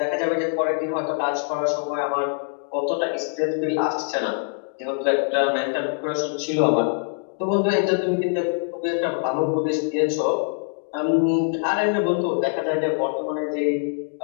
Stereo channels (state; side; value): silent; right; digital silence